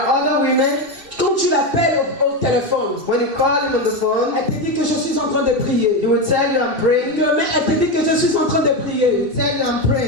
other women, quand tu l'appelles au téléphone, when you call him on the phone, elle te dit que je suis en train de prier. he will tell you I'm praying. Demain, elle te dit que je suis en train de He prier. will tell you I'm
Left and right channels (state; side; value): late; left; 2.7 ms